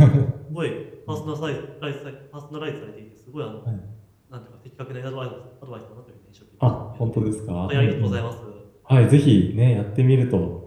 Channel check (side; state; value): both; identical; correlation 1.00